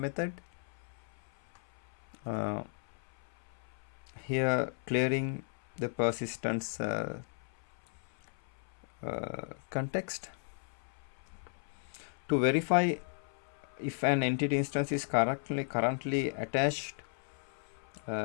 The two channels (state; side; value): silent; right; 54 dB below the other